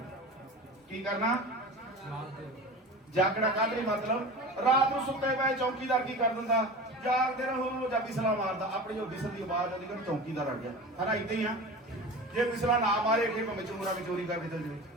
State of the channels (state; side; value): normal; both; correlation 0.33